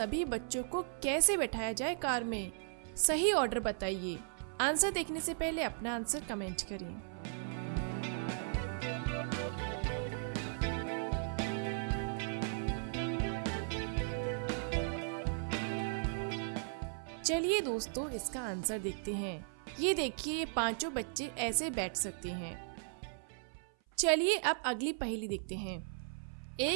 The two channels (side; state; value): left; silent; 53 dB below the other